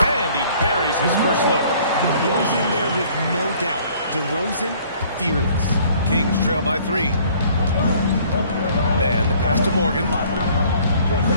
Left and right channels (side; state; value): both; inverted; correlation -0.56